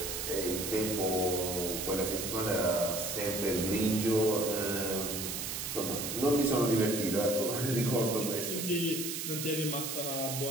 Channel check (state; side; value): noise; right; hiss, 4 dB below the sound